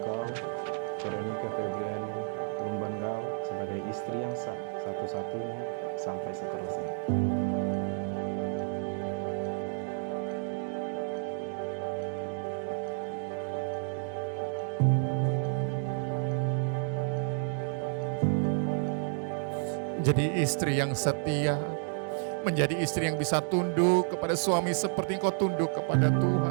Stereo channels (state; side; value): silent; left; 57 dB below the other